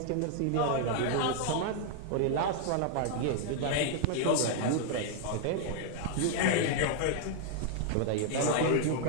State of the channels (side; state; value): both; different; correlation 0.00